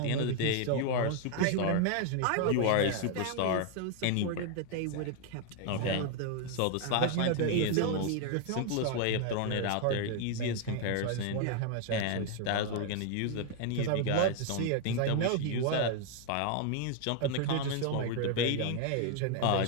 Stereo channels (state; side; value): different; both; correlation 0.01